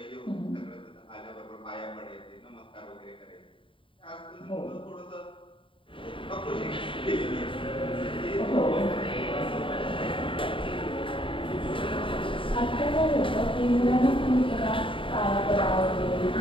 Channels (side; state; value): right; late; 0.25 ms